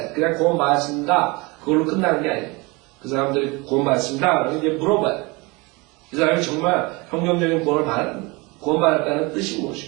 그냥 구원받았습니다. 그걸로 끝나는 게 아니에요. 그 사람들이 구원받았습니다. 그러면 이제 물어봐야 돼. 이 사람이 정말 성경적인 구원받았다는 뜻이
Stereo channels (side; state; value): left; quieter; 26.0 dB